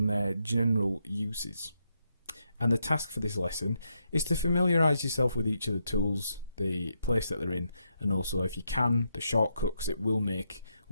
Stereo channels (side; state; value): both; inverted; correlation -0.81